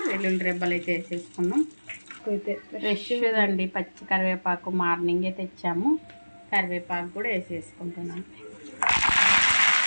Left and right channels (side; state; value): both; inverted; correlation -1.00